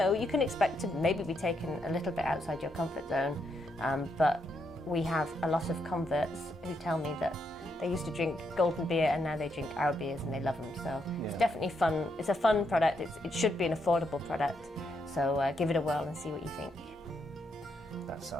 can expect to maybe be taken a little bit outside your comfort zone. But we have a lot of converts who tell me that they used to drink golden beer and now they drink our beers and they love them. So It's definitely fun. It's a fun product. It should be an affordable product. So give it a whirl and see what you think. That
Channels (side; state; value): both; normal; correlation 0.79